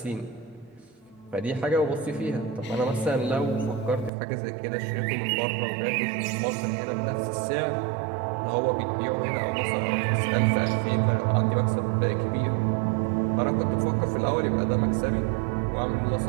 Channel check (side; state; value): left; drops out; at 4.1 s